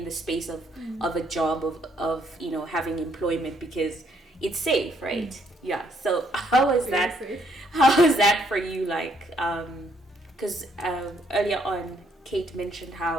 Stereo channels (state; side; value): normal; both; correlation 0.70